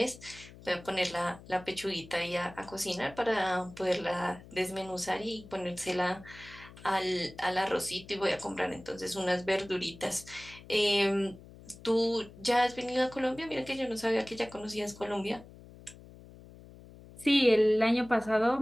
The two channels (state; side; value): noise; left; hum, 19 dB below the sound